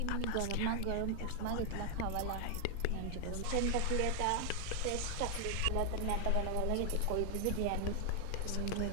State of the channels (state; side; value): different; both; correlation 0.00